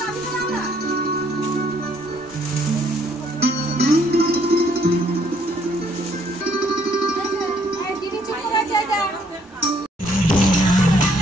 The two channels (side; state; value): both; normal; correlation 0.66